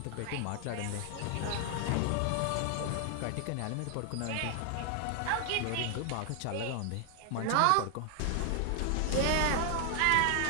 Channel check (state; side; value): different; both; correlation 0.00